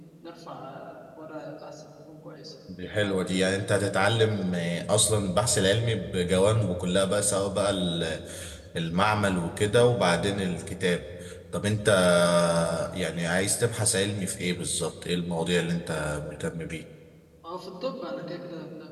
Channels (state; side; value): identical; both; correlation 1.00